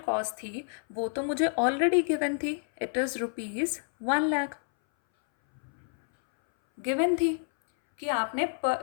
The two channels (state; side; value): silent; right; 59 dB below the other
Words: थी वो तो मुझे ऑलरेडी गिवन थी, इट इज़ ₹1 लाख गिवन थी कि आपने